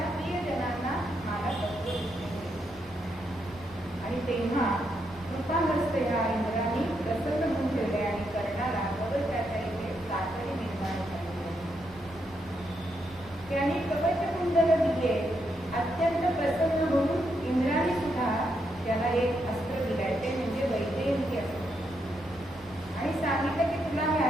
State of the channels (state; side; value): normal; both; correlation 0.80